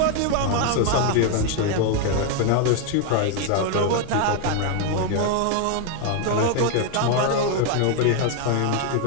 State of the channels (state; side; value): different; both; correlation 0.01